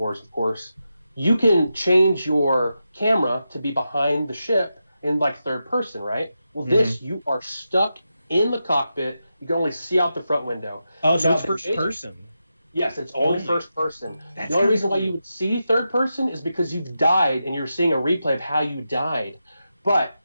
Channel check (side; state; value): both; inverted; correlation -0.89